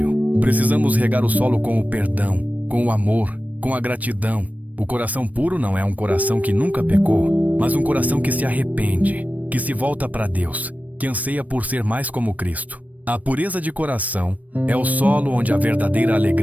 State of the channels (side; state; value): left; late; 0.072 ms